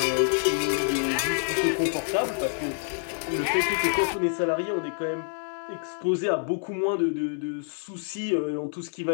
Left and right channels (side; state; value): right; silent; 60 dB below the other